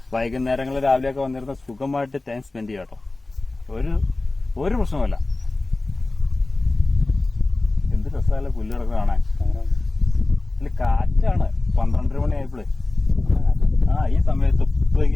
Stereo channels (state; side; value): quieter; right; 3.1 dB